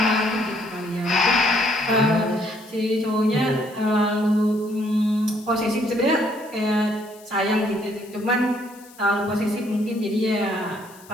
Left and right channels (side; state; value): left; noise; hiss, 23 dB below the sound